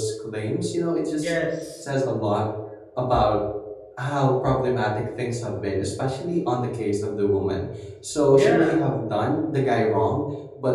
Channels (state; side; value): identical; both; correlation 1.00